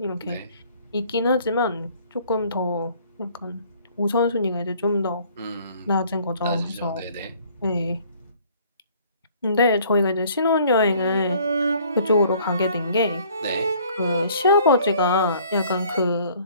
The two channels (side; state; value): both; inverted; correlation -0.57